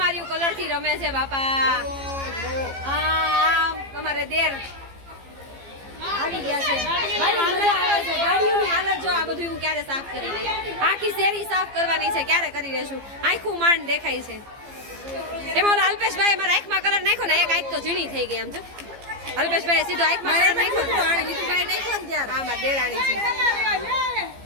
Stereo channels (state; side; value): late; left; 15 ms